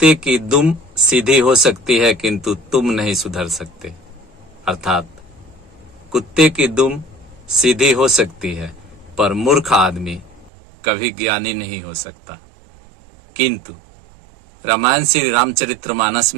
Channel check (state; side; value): drops out; left; at 10.5 s